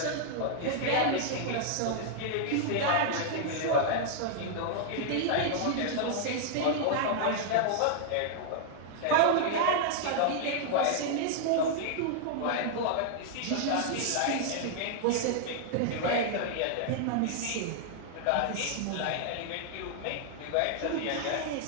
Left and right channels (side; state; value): both; different; correlation -0.01